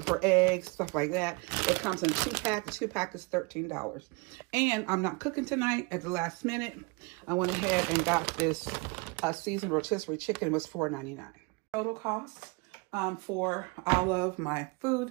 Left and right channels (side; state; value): left; quieter; 29.1 dB